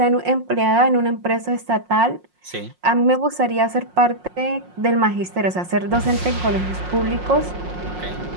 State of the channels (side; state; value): left; late; 5.6 ms